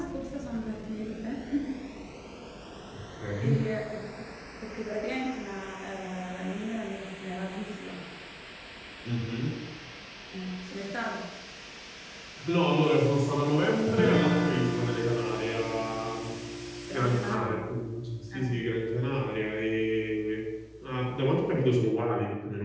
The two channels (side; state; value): both; identical; correlation 1.00